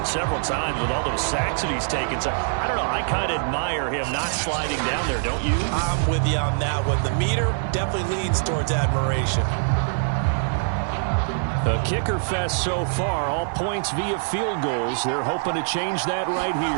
several times with all those sacks that he's taken. So, I don't know, I kind of admire him not sliding down there, don't you? I'm with you on that one. The meter definitely leans towards admiration. A kicker fest so far, all points via field goals. They're hoping to change that right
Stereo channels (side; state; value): left; silent; digital silence